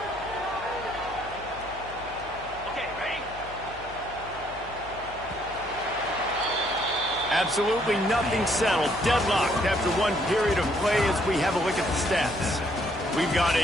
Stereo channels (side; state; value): left; noise; hum, 18 dB below the sound